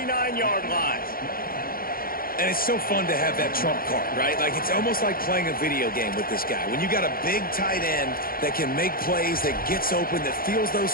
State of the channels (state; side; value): late; right; 0.42 ms